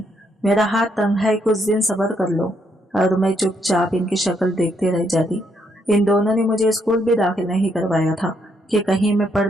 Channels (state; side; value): normal; both; correlation 0.74